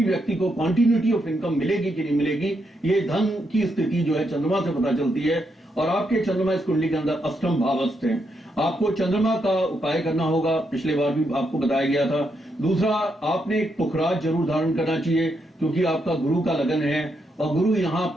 व्यक्ति को क्वांटिटी ऑफ इनकम मिलेगी कि नहीं मिलेगी, ये धन की स्थिति जो है चंद्रमा से पता चलती है। और आपके चंद्रमा इस कुंडली के अंदर अष्टम भावस्थ हैं। आपको चंद्रमा का उपाय करना होगा, पिछले बार भी आपको बताया गया था। दूसरा, आपने एक पुखराज जरूर धारण करना चाहिए, क्योंकि आपका गुरु का लगन है और गुरु यहाँ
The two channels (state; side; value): normal; both; correlation 0.80